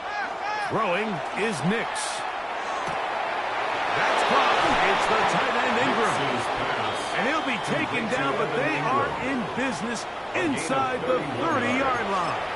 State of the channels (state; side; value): identical; both; correlation 1.00